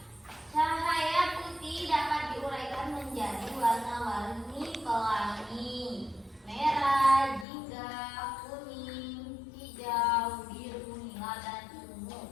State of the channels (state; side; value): drops out; right; at 7.5 s